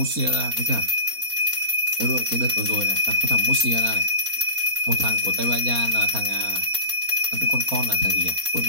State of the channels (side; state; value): left; late; 4.2 ms